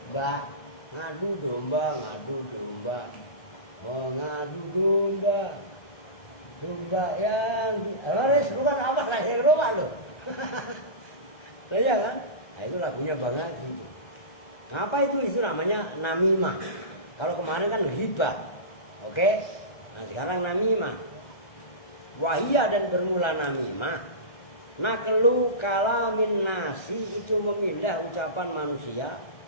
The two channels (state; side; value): late; right; 1.3 ms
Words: Ngadu domba. Mengadu domba. Domba yang Loris bukan apa lahir domba lo. Ya kan? Nah, itu lagunya banget gitu. Apa itu? Itu namanya namimah. Kalau kemarin kan riba. Oke? Nah sekarang namimah. Wahia dan bermula namimah. Naklu kalamin nasi itu memindah ucapan manusia.